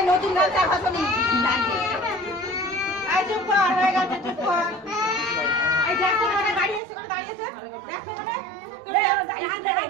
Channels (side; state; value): left; drops out; at 6.8 s